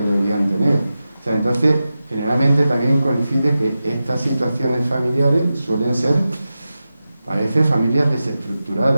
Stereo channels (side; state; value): both; inverted; correlation -0.93